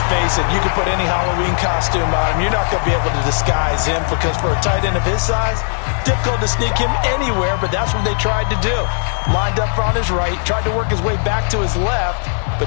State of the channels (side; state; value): right; silent; digital silence